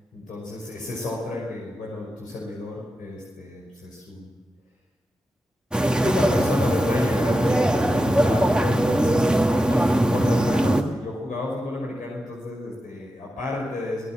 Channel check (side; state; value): both; normal; correlation 0.90